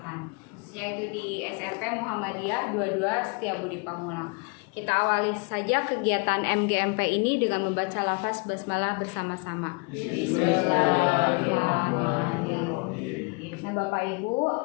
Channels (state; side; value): quieter; right; 31.5 dB